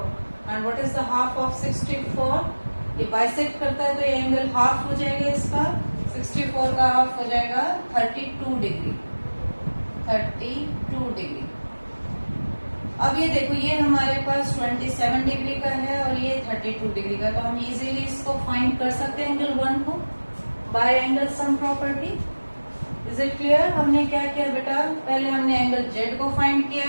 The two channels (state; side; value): inverted; both; correlation -1.00